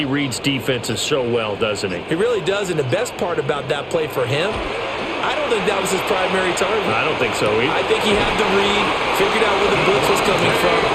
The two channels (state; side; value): identical; both; correlation 1.00